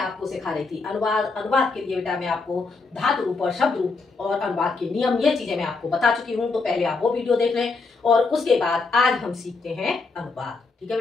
सिखा रही थी अनुवाद। अनुवाद के लिए बेटा मैं आपको धातु रूप और शब्द रूप और अनुवाद के नियम, ये चीजें मैं आपको बता चुकी हूँ। तो पहले आप वो वीडियो देख लें और उसके बाद आज हम सीखते हैं अनुवाद। ठीक है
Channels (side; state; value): right; quieter; 4.1 dB